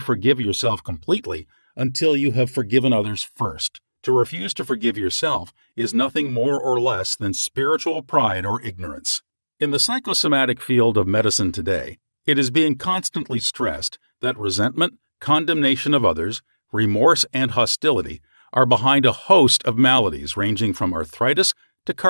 yourself completely until you have forgiven others first. To refuse to forgive yourself is nothing more or less than spiritual pride or ignorance. In the psychosomatic field of medicine today, it is being constantly stressed that resentment, condemnation of others, remorse, and hostility are behind a host of maladies ranging from arthritis to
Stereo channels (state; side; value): inverted; both; correlation -1.00